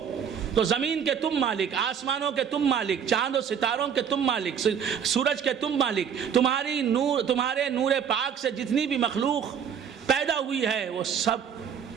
تو زمین کے تم مالک، آسمانوں کے تم مالک، چاند و ستاروں کے تم مالک، سورج کے تم مالک. تمہارے نور پاک سے جتنی بھی مخلوق پیدا ہوئی ہے وہ سب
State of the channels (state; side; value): quieter; left; 7.8 dB